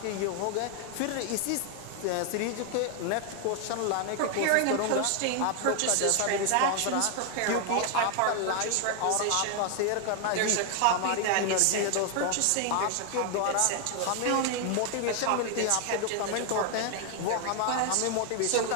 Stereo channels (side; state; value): both; different; correlation 0.00